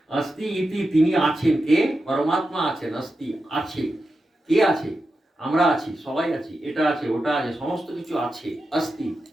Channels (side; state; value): both; normal; correlation 0.90